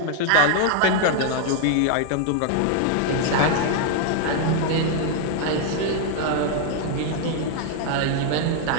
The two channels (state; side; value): different; both; correlation 0.00